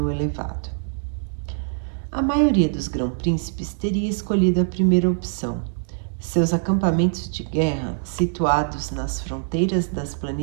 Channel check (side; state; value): left; silent; digital silence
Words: elevado. A maioria dos grão-príncipes teria escolhido a primeira opção. Seus acampamentos de guerra, situados nas fronteiras das